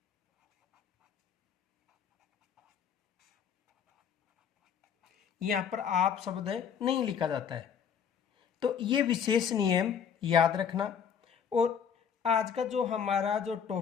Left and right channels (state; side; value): quieter; right; 7.5 dB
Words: यहां पर आप शब्द नहीं लिखा जाता है। तो ये विशेष नियम याद रखना। और आज का जो हमारा जो